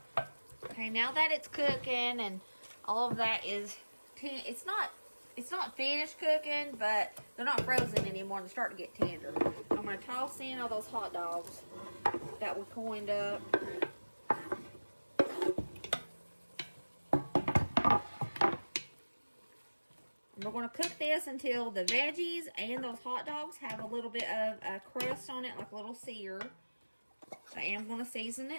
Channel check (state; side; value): inverted; both; correlation -1.00